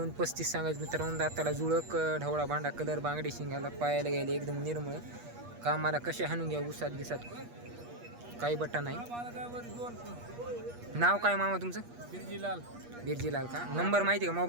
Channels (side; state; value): left; late; 8.4 ms